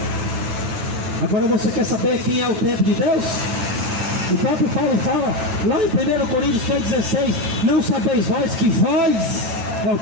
Agora você quer saber quem é o templo de Deus? O próprio Paulo fala, lá em 1 Coríntios 3,16, não sabeis vós que vós é o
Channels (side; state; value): left; late; 9.1 ms